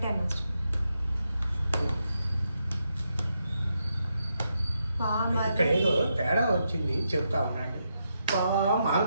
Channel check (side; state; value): both; inverted; correlation -0.83